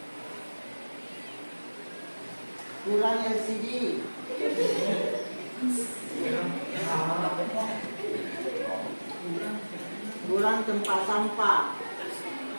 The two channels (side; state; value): both; inverted; correlation -1.00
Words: Kurang LCD. Kurang tempat sampah.